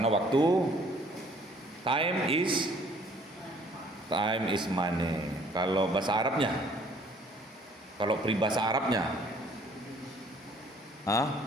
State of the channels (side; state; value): both; normal; correlation 0.58